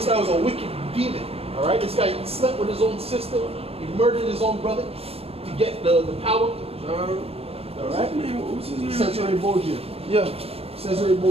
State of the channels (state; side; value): late; left; 0.29 ms